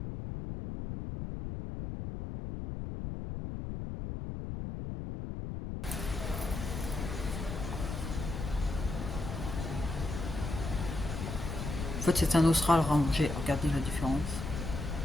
En fait c'est un Austral rangé, regardez la différence.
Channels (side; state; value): left; noise; rumble, 5 dB below the sound